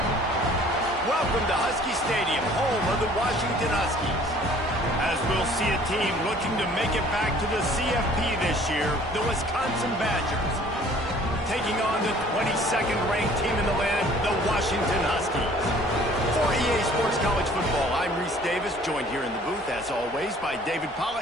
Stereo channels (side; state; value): both; normal; correlation 0.53